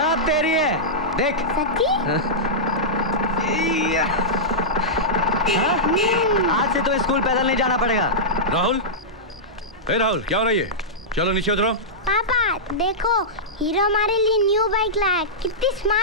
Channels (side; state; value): both; normal; correlation -0.13